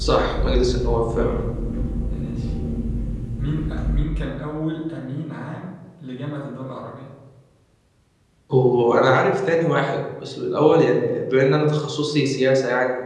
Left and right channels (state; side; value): identical; both; correlation 1.00